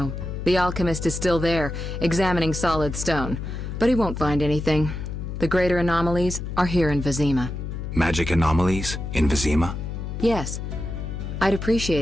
The alchemist is still there, examining solid stone, but he won't find anything. The greater anomalies are here in Vizima. Magic anomalies? In Vizima? Yes. I'd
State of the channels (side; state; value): left; noise; hum, 6 dB below the sound